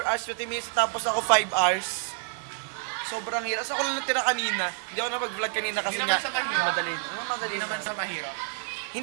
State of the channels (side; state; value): left; silent; digital silence